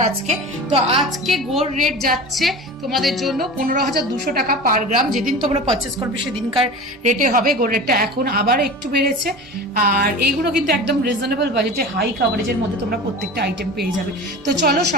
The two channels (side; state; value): both; normal; correlation 0.33